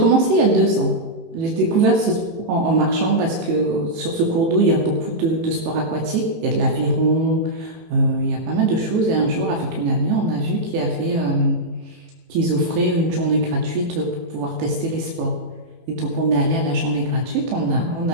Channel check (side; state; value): left; late; 18 ms